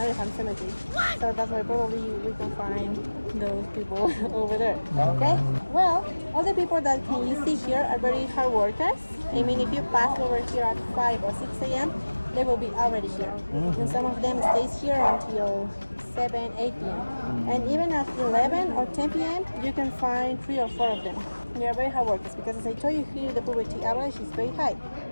cemeteries. So that's why probably we can find those people over there. Okay? Well, all the people that can you see here are very hard workers. I mean, if you pass over here at 5 or 6 a.m., they will be already here. And some of them stays here until 7, 8 p.m. And even at 11 or 10 p.m., you can find 3 or 4 of them. They are very hard workers because as I told you here, the poverty average is very high.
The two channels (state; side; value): inverted; both; correlation -1.00